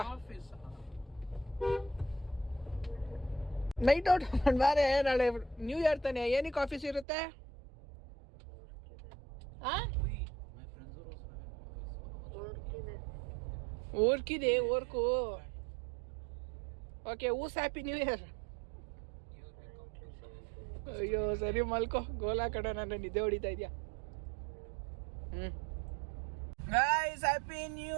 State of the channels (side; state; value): left; drops out; at 7.1 s